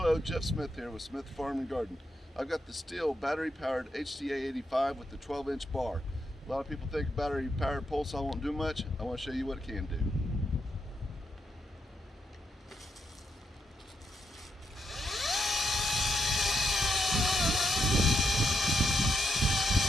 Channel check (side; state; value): both; normal; correlation 0.80